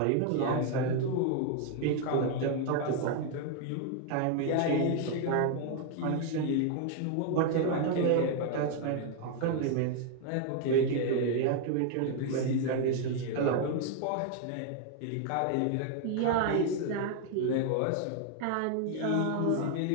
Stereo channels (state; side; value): different; both; correlation 0.00